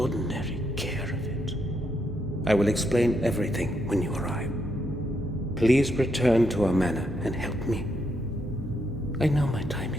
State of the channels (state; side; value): normal; both; correlation 0.78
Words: care of it. I will explain everything when you arrive. Please return to our manor and help me. I know my time